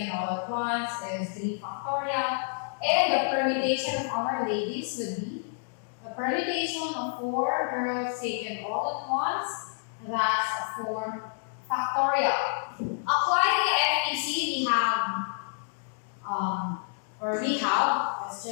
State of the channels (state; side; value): silent; right; digital silence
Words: all at once is 3 factorial. And the permutation of our ladies would be the permutation of 4 girls taken all at once, that's 4 factorial. Applying the FPC, let's